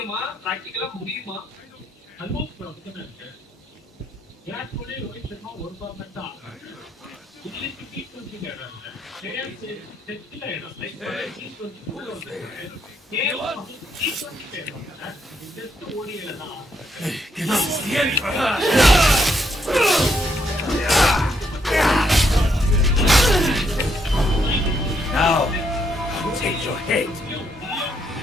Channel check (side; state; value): both; normal; correlation 0.75